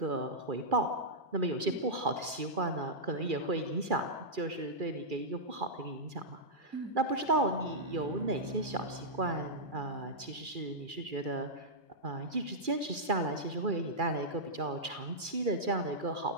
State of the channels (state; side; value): late; left; 2.4 ms